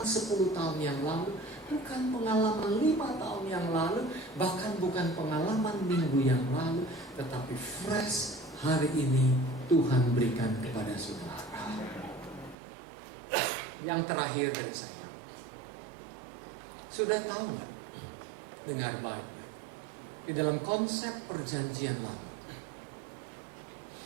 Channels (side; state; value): left; drops out; at 12.6 s